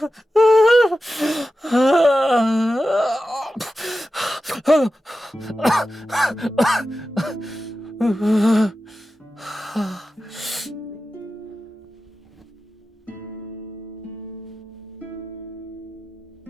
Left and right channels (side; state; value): both; normal; correlation 0.93